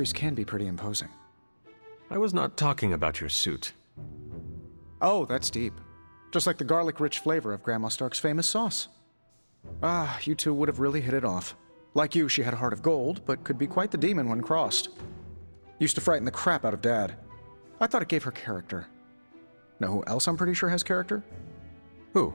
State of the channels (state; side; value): inverted; both; correlation -1.00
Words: can be pretty imposing. I was not talking about your suit. Oh, that's deep. Just like the garlic-rich flavor of Grandma Stark's famous sauce. Ah, you two would have really hit it off. Like you, she had a heart of gold, but could be quite the demon when crossed. Used to frighten the crap out of Dad. I thought it gave her character. Know who else I'm pretty sure has character?